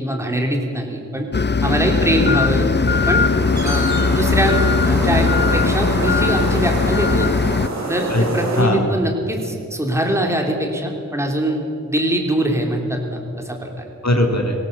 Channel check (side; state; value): both; normal; correlation 0.49